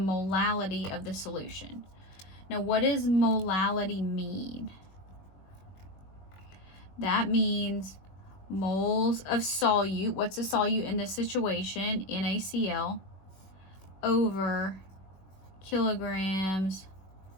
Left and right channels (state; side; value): late; right; 21 ms